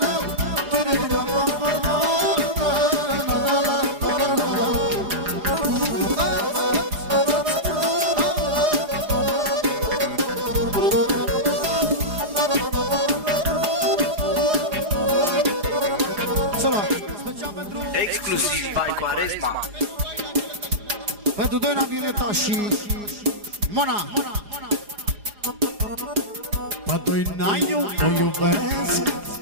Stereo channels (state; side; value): late; left; 4.9 ms